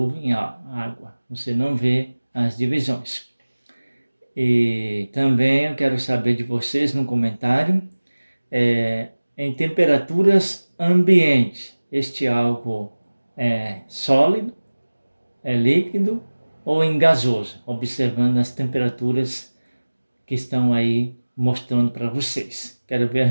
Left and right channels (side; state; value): both; inverted; correlation -1.00